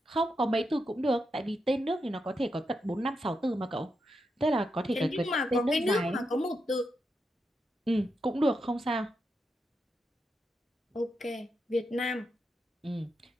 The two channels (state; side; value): normal; both; correlation 0.85